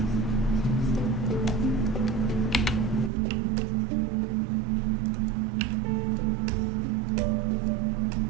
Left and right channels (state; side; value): drops out; left; at 3.1 s